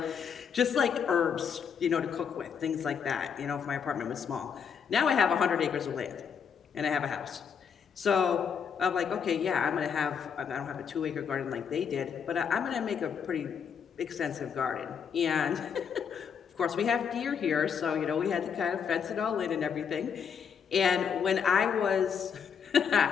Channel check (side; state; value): right; quieter; 7.0 dB